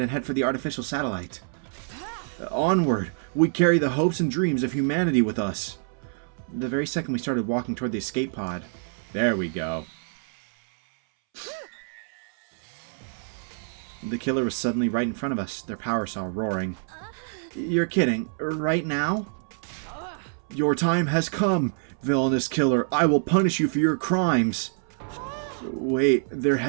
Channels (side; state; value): left; silent; 61 dB below the other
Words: head for the artificial satellite. Onward! We carry the hopes and dreams of humanity with us. The very second we started walking toward the escape pod. There we go. The killer was suddenly right in front of us, their power cell roaring. You're kidding. Right now? Your time has come, villainous killer. I will punish you for your crimes. Wait, they're